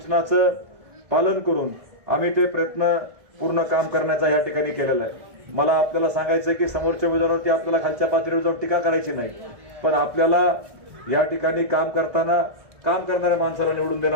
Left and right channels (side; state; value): left; late; 1.7 ms